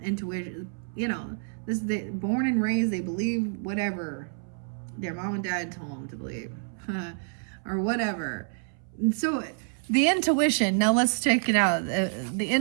intuition. You know, this they born and raised, they believe whatever their mom and dad told them to believe, or whatever. And so The intuition. Now let's check it out. The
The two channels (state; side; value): silent; left; 59 dB below the other